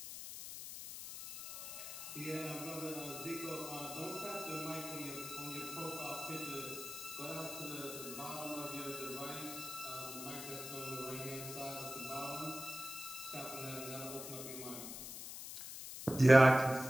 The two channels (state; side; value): noise; left; hiss, 8 dB below the sound